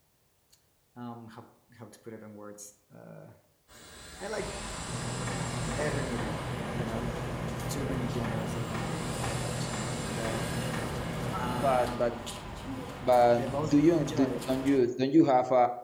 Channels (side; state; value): both; identical; correlation 1.00